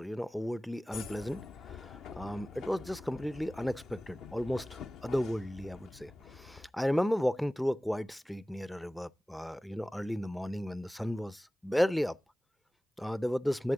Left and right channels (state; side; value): normal; both; correlation 0.98